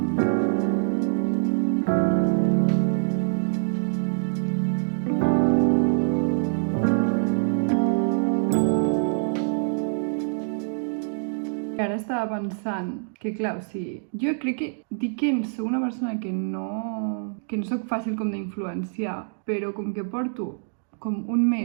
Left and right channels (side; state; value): left; silent; digital silence